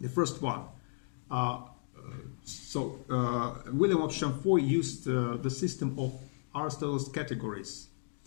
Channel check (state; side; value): silent; right; digital silence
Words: The first one, William of Champeaux used the system of Aristotle's categories.